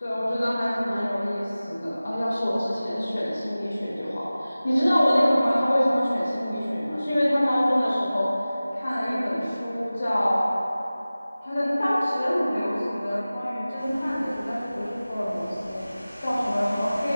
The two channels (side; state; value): both; inverted; correlation -0.97